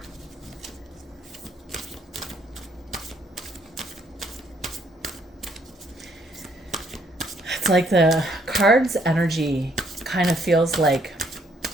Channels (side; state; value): both; normal; correlation 0.68